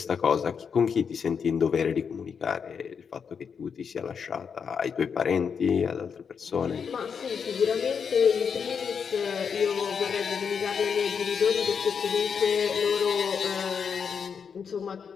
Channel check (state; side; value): quieter; right; 6.5 dB